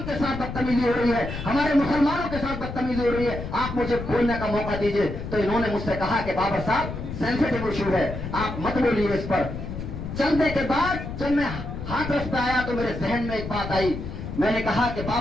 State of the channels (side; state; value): left; noise; rumble, 7 dB below the sound